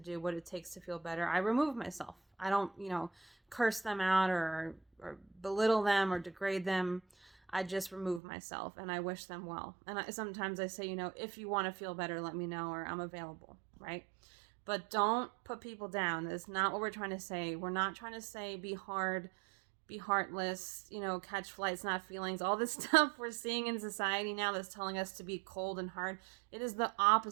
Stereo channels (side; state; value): left; drops out; at 8.2 s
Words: what it takes to feel better, I remove myself. I don't, curse them out or belittle them or degrade them. I just remove myself and I wish them well. And sometimes I say, if you want to feel better, let me know, or I'm available, right? But don't put people down. That's not what we're trying to say. We're not trying to say be hard, be heartless, catch flights, not feelings. All this stuff we're seeing in society now that's telling us to be cold and hard. It is the